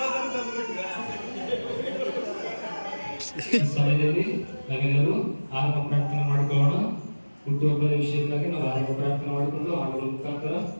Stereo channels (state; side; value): inverted; both; correlation -1.00